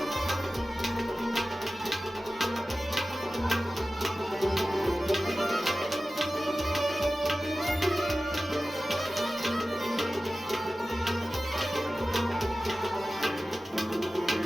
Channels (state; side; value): normal; both; correlation 0.96